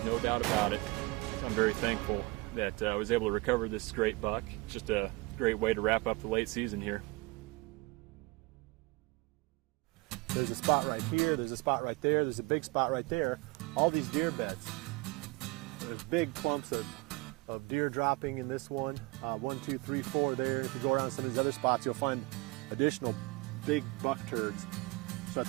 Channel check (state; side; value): quieter; left; 23.5 dB